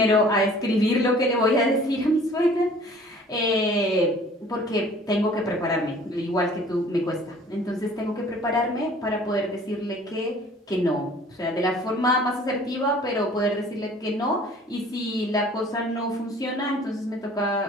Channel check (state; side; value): normal; both; correlation 0.51